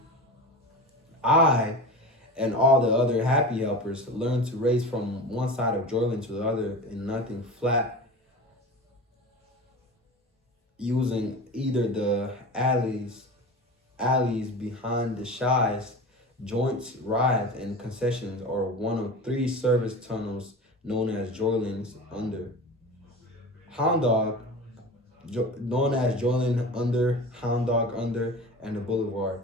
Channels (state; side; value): normal; both; correlation 0.32